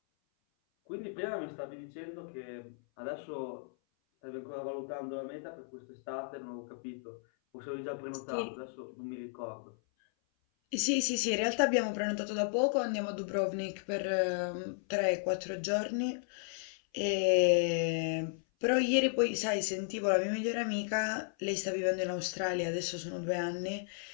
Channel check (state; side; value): silent; right; 55 dB below the other